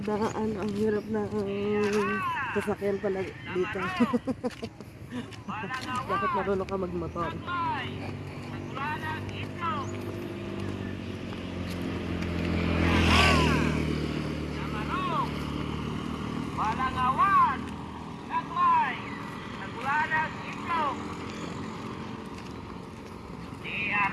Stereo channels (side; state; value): both; identical; correlation 1.00